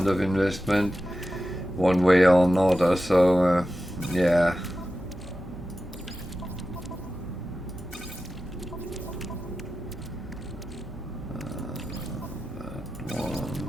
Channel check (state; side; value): normal; both; correlation 0.93